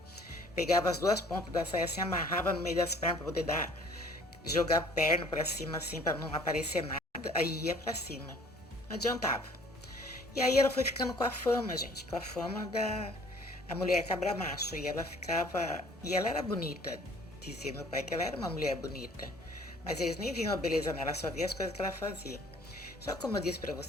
pegava as 2 pontas da saia, assim, amarrava no meio das pernas para poder jogar a perna para cima, assim, para não aparecer nada, aí ia para cima. Não adiantava. E aí ela foi ficando com a fama, gente, com a fama da a mulher cabra macho. E ela ficava. E ela era bonita, dizia meu pai que ela era uma mulher bonita. Mas eles nem viam a beleza nela, só viam as coisas que ela fazia. Só que, como eu disse para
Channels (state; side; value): normal; both; correlation 0.54